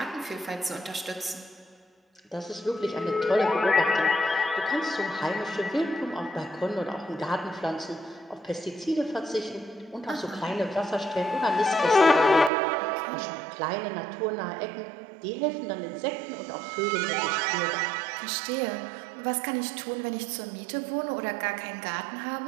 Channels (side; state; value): left; drops out; at 12.5 s